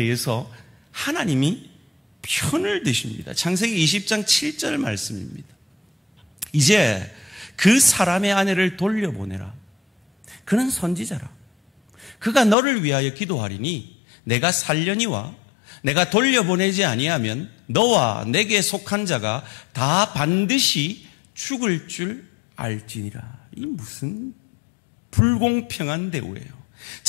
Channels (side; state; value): right; drops out; at 12.6 s